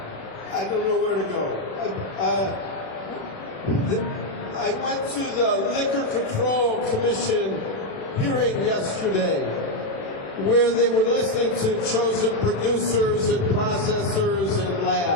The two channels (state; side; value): late; right; 36 ms